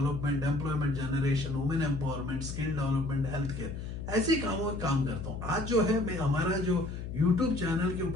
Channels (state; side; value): noise; left; hum, 7 dB below the sound